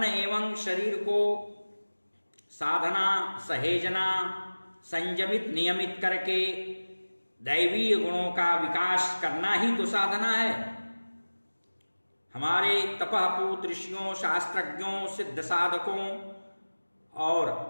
एवं शरीर को साधना, सहेजना, संयमित, नियमित करके दैवीय गुणों का विकास करना ही तो साधना है। हमारे तपःपूत ऋषियों, शास्त्रज्ञों, सिद्ध साधकों और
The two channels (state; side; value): inverted; both; correlation -1.00